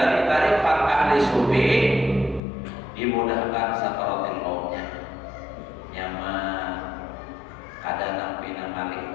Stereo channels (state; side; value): drops out; right; at 2.4 s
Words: tarikat ahli sufi dimudahkan sakaratil mautnya nyaman kadang pina malik